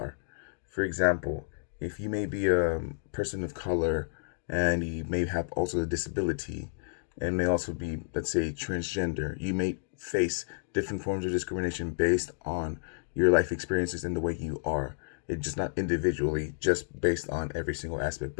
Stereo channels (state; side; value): silent; right; digital silence